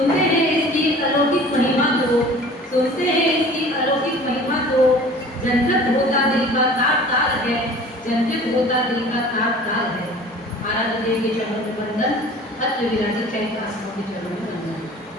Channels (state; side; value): normal; both; correlation 0.45